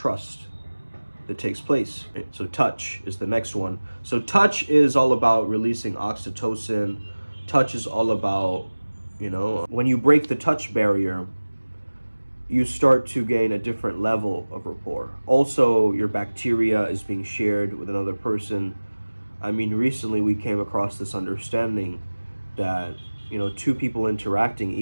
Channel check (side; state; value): both; inverted; correlation -1.00